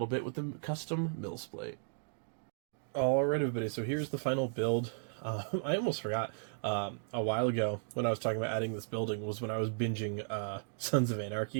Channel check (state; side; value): silent; left; digital silence